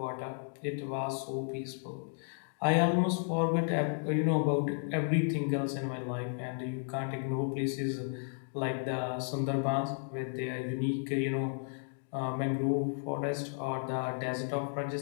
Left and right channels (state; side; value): silent; right; digital silence